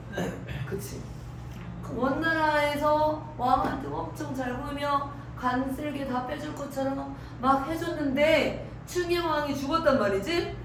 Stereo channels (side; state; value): both; identical; correlation 1.00